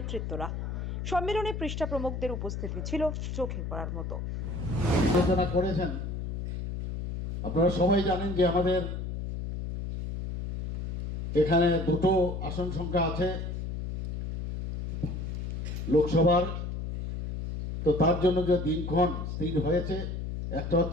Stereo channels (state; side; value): noise; left; hum, 4 dB below the sound